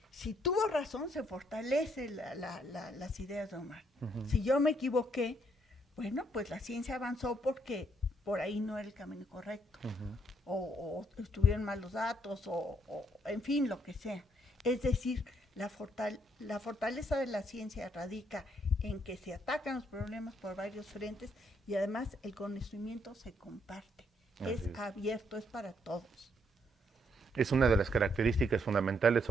Si tuvo razón, se fortalece las ideas de Omar. Si yo me equivoqué, bueno, pues la ciencia avanzó porque por ahí no era el camino correcto. O estuvieron mal los datos, o en fin, lo que sea. Es decir, la fortaleza de la ciencia radica en que se atacan los problemas por varios frentes y además el conocimiento se comparte. Es Así es. abierto, es para todos. Es una de las características fundamentales,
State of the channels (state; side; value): normal; both; correlation 0.72